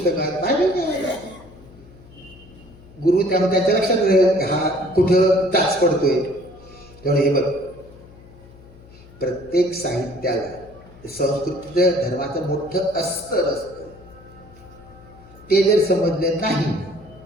बायबल काय गुरु त्यामुळे त्याच्या लक्षात हा कुठं टाच पडतोय. त्यामुळे हे बघ, प्रत्येक साहित्याला संस्कृतीचं धर्माचं मोठं अस्तर असतं. ते जर समजलं नाही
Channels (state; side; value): noise; left; hum, 22 dB below the sound